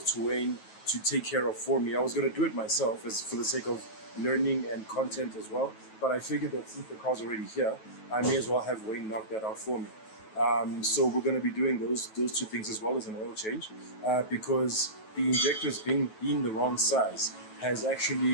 to Wayne to take care of for me. I was going to do it myself as for the sake of learning and content as well, but I figured that since the car's already here, I may as well have Wayne knock that out for me. So we're going to be doing those two things as well as an oil change, because the injectors being the wrong size has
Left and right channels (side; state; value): right; late; 9.3 ms